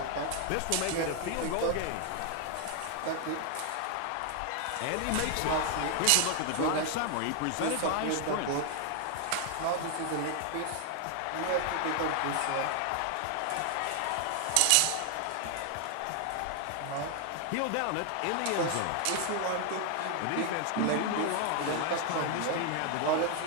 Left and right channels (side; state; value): both; different; correlation 0.00